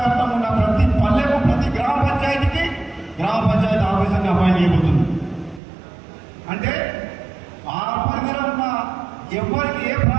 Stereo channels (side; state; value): left; drops out; at 5.6 s